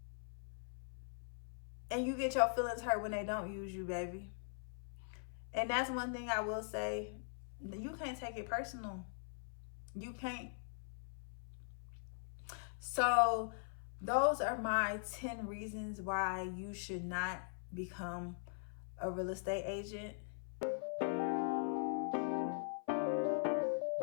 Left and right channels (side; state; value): right; silent; 50 dB below the other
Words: And you get your feelings hurt when they don't use you, baby. And that's one thing I will say. You can't take it personal. You can't. So those are my 10 reasons why you should not become a real estate agent.